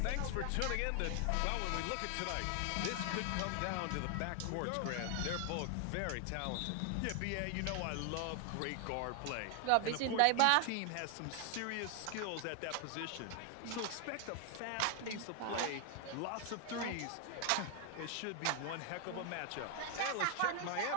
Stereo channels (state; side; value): different; both; correlation 0.00